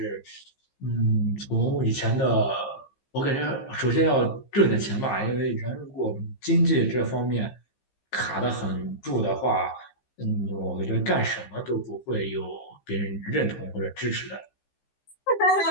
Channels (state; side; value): late; right; 15 ms